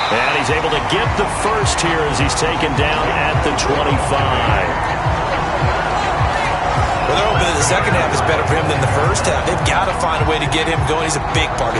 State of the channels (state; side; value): identical; both; correlation 1.00